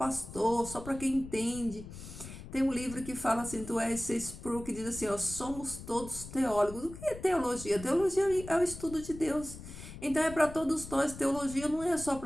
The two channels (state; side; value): noise; left; rumble, 13 dB below the sound